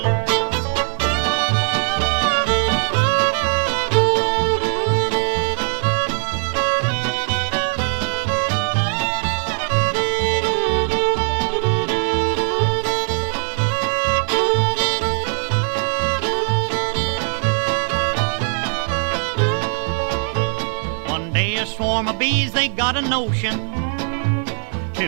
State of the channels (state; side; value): silent; left; 55 dB below the other